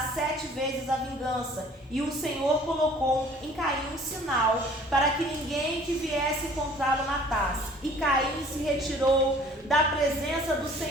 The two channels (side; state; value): both; normal; correlation 0.52